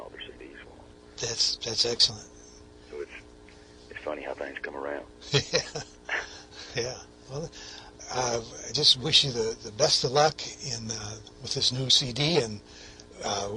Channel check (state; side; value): identical; both; correlation 1.00